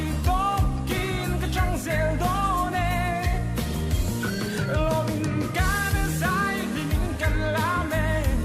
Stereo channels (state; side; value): identical; both; correlation 1.00